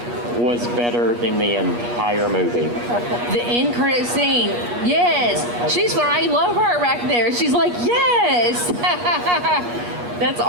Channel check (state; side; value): late; left; 8.4 ms